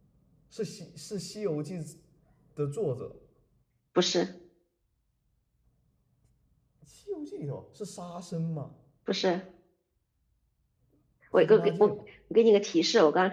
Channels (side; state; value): both; identical; correlation 1.00